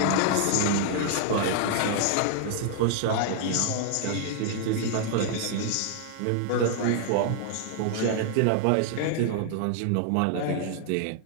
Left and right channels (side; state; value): both; different; correlation 0.00